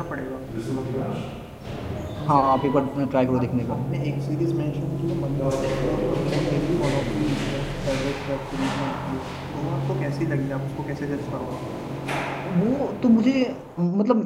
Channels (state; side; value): identical; both; correlation 1.00